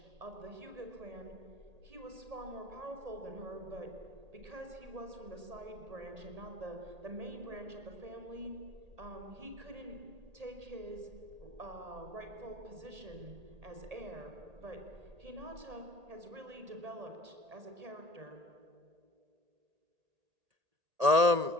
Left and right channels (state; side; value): late; left; 1.8 ms